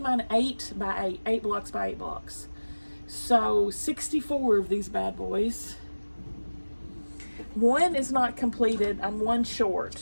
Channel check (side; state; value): both; inverted; correlation -1.00